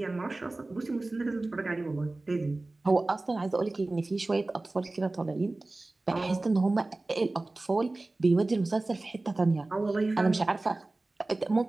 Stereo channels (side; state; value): left; quieter; 3.0 dB